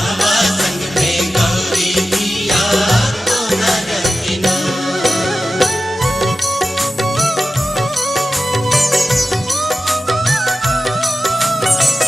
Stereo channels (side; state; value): both; normal; correlation 0.94